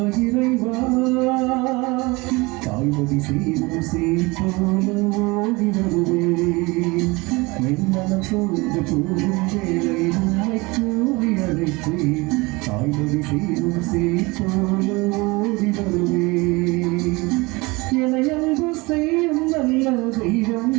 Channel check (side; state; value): left; quieter; 24.3 dB